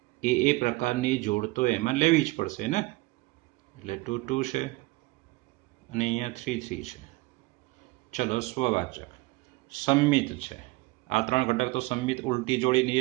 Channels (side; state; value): left; quieter; 22.1 dB